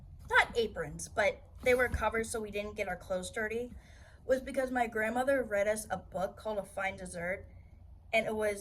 not aprons, but they were covered so we didn't get our clothes dirty, was because my grandmother read us a book called A Fine Dessert. And it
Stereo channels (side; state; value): both; identical; correlation 1.00